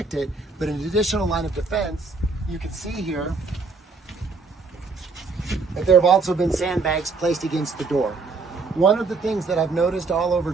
it, but an additional line of defense, you can see here that there have also been sandbags placed against the door. One of the things that I've noticed all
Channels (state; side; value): quieter; left; 4.2 dB